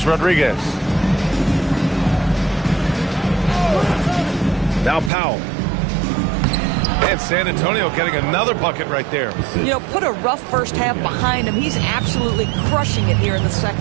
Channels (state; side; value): drops out; left; at 5.1 s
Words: Rodriguez. Now Powell. And San Antonio getting another bucket right there. You know, put a rough first half behind him. He's absolutely crushing it here in the